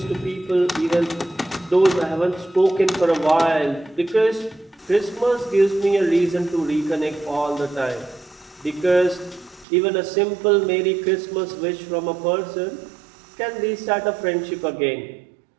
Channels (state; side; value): drops out; left; at 9.7 s